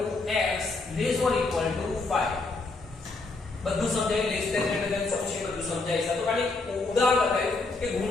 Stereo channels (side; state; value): right; quieter; 3.5 dB